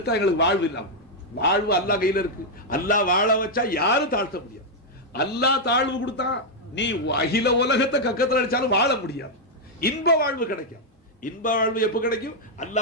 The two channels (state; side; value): normal; both; correlation -0.02